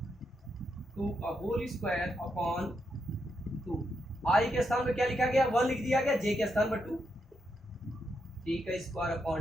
2 का होल स्क्वायर अपॉन 2। I के स्थान पर क्या लिखा गया, 1 लिख दिया गया, J के स्थान पर 2, 3 का स्क्वायर अपॉन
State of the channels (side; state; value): both; normal; correlation 0.82